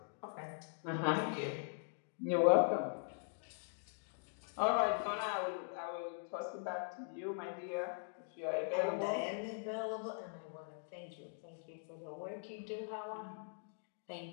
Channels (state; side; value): silent; right; digital silence